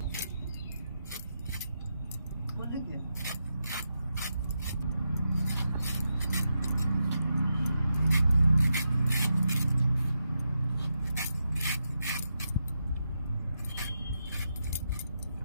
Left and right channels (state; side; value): inverted; both; correlation -0.86